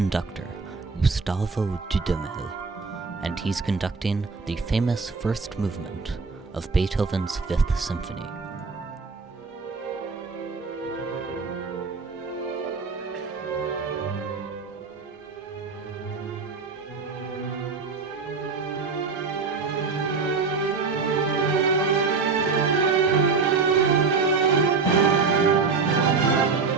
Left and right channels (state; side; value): quieter; left; 4.7 dB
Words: Gustavo Dudamel, and he's conducting the famous first movement of Beethoven's Fifth Symphony.